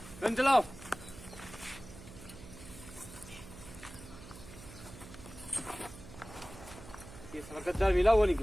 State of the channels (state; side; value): noise; right; hum, 16 dB below the sound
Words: गन चलाओ। ये साला गद्दार मिला, वो